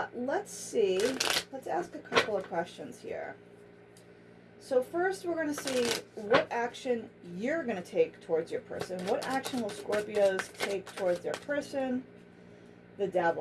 Let's see. Let's ask a couple of questions here. So first, we're going to see what action you're going to take towards your person. What action will Scorpios take towards their person? The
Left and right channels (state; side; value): identical; both; correlation 1.00